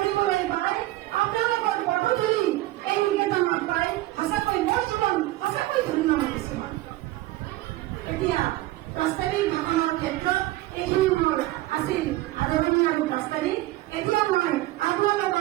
পাই, আপোনালোকৰ পদধূলি এই নিকেতনত পাই সঁচাকৈ মোৰ জীৱন সঁচাকৈ ধন্য হৈছো। এতিয়া প্ৰস্তাৱিক ভাষণৰ ক্ষেত্ৰত এইখিনি মোৰ আছিল আদৰণি আৰু প্ৰস্তাৱিক। এতিয়া মই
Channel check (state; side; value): quieter; left; 17.5 dB